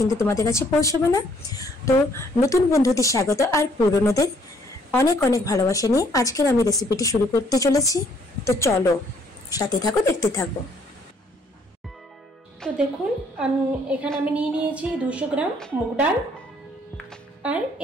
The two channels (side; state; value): both; normal; correlation 0.65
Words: তোমাদের কাছে পৌঁছাবে না। তো নতুন বন্ধুদের স্বাগত আর পুরনোদের অনেক অনেক ভালোবাসা নিয়ে আজকের আমি রেসিপিটি শুরু করতে চলেছি। তো চলো সাথে থাকো, দেখতে থাকো। তো দেখুন, এখানে আমি নিয়েছি 200 গ্রাম মুগ ডাল, আর